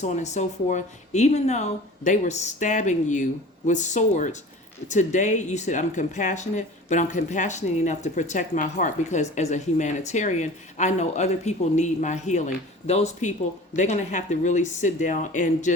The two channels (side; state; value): both; normal; correlation 0.40